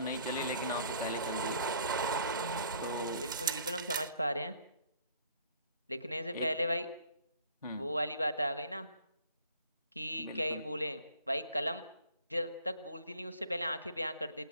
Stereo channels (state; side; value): inverted; both; correlation -0.56